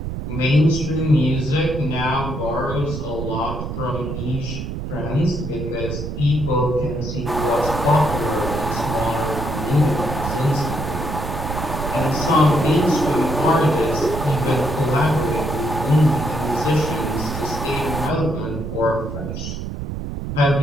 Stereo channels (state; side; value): noise; right; rumble, 5 dB below the sound